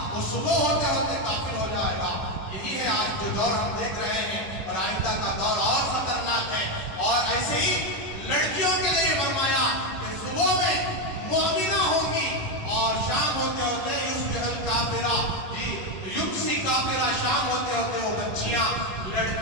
وہ صبح ہوتے ہوتے کافر ہو جائے گا۔ یہی ہے آج جو دور ہم دیکھ رہے ہیں، اور آئندہ کا دور اور خطرناک ہے۔ اور ایسے ہی لڑکیوں کے لیے فرمایا کہ صبح میں مومنہ ہوں گی اور شام ہوتے ہوتے یصبح کافرہ، یمسی کافرہ، شام ہوتے ہوتے وہ بچیاں،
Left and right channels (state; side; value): late; right; 10 ms